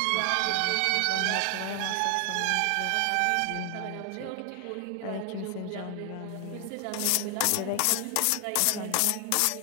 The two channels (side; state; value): both; different; correlation 0.00